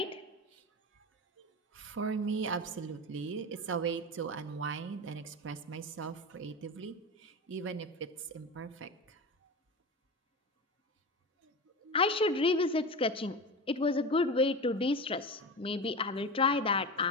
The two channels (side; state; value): both; normal; correlation 0.25